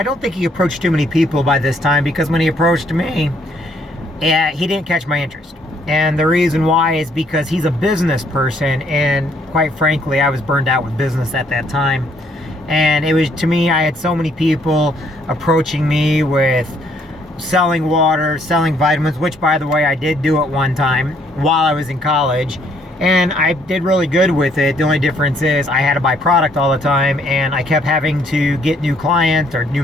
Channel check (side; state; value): both; normal; correlation 0.67